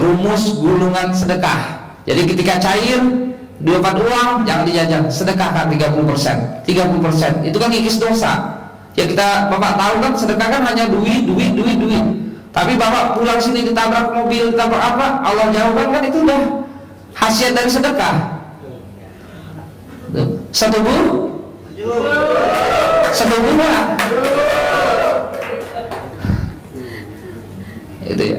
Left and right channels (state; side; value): identical; both; correlation 1.00